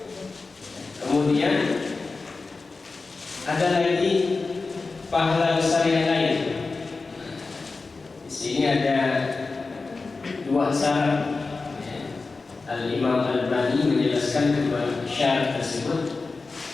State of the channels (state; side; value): quieter; right; 3.9 dB